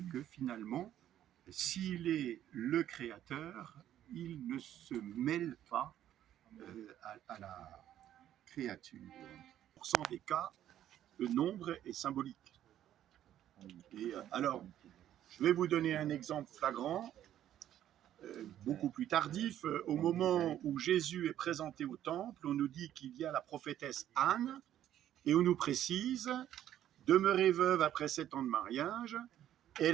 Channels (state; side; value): quieter; left; 11.6 dB